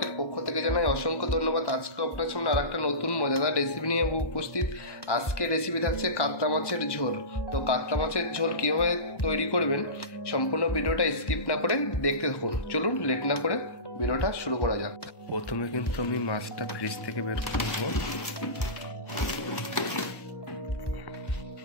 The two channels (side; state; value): right; late; 1.1 ms